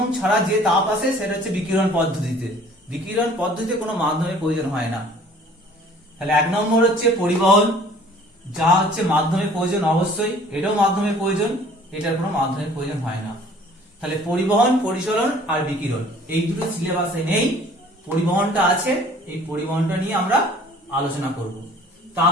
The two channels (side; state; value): both; normal; correlation 0.52